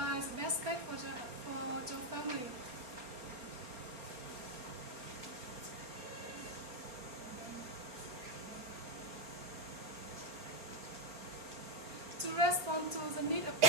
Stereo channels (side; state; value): left; late; 4.3 ms